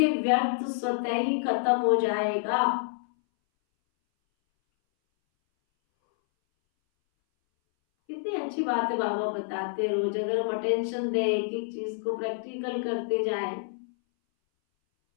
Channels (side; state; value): right; silent; 59 dB below the other